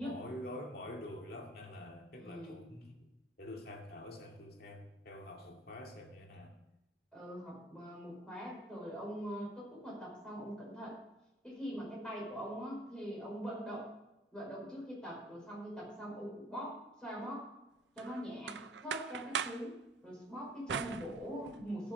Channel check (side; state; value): both; normal; correlation 0.53